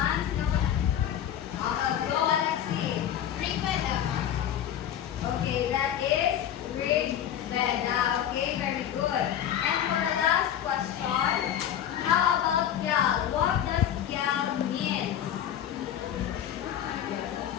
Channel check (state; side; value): quieter; right; 10.3 dB